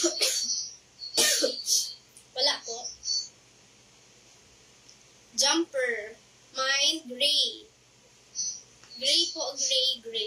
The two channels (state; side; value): identical; both; correlation 1.00